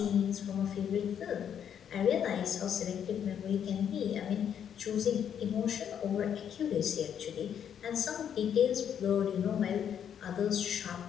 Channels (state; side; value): quieter; right; 8.7 dB